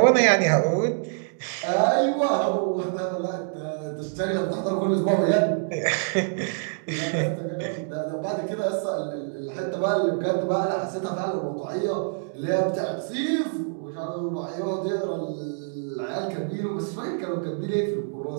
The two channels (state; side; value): silent; left; digital silence